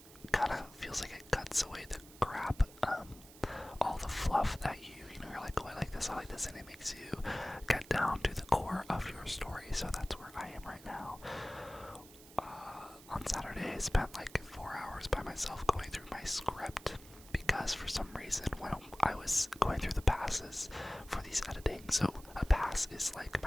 kind of feels like it cuts away the crap, all the fluff that you're like, oh, I like this, and it makes you get down to the core of your story. So that's where I am right now. On Saturday, I spent like 4 hours by myself going through my script, because for some reason when I was going through the passes for these editing, so a pass is like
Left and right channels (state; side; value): noise; right; hiss, 20 dB below the sound